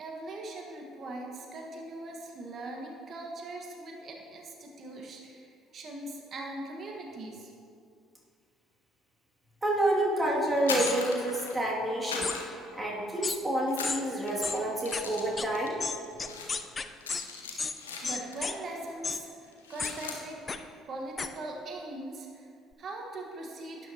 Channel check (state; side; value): normal; both; correlation 0.67